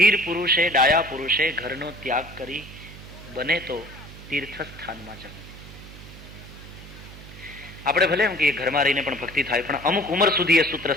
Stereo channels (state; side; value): noise; right; hum, 16 dB below the sound